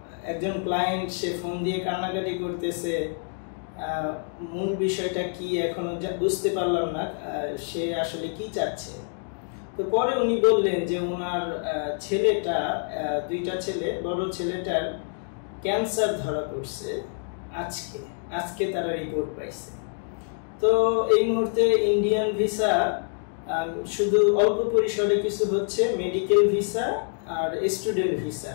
একজন ক্লায়েন্ট সে ফোন দিয়ে কান্নাকাটি করতেছে, মূল বিষয়টা কি এখনো বুঝতে পারলাম না, সে আসলে কি চাচ্ছে। তো পরে উনি বললেন যে ওনার ছেলেটা, দুইটা ছেলে, বড় ছেলেটার ক্যান্সার ধরা পড়ছে আজকে তারা রিপোর্ট পাইছে। তো এই মুহূর্তে ইন্ডিয়ান ভিসা শুধু অল্প পরিসরে কিছু হচ্ছে, মেডিকেল ভিসা আর স্টুডেন্ট ভিসা,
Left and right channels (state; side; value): silent; right; 61 dB below the other